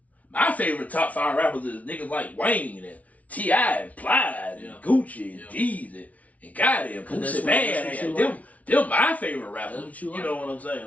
My favorite top 5 rappers is niggas like Wayne and T.I. and Plies and Gucci and Jeezy and goddamn Pussy Bad. Them my favorite rappers. That's what you like. You know what I'm saying?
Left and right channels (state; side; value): late; right; 0.069 ms